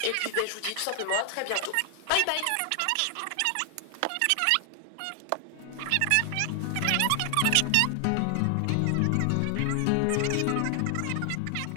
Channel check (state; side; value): different; both; correlation 0.00